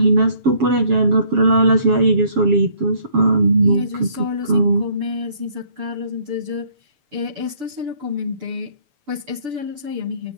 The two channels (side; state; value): left; late; 6.9 ms